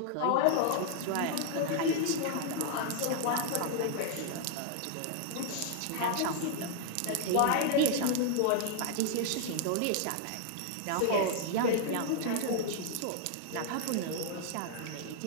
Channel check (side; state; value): both; different; correlation 0.00